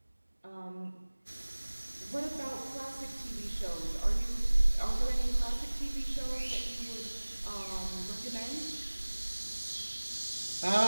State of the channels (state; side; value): inverted; both; correlation -1.00